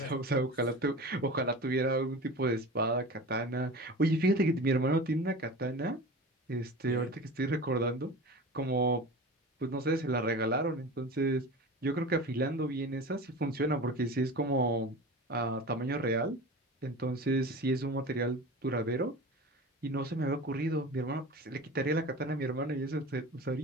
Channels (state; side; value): normal; both; correlation 0.34